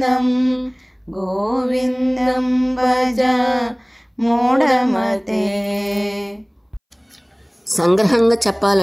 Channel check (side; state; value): both; identical; correlation 1.00